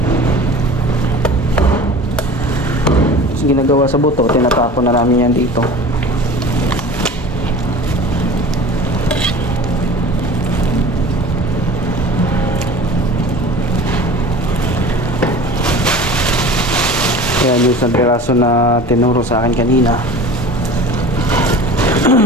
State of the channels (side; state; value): both; normal; correlation 0.39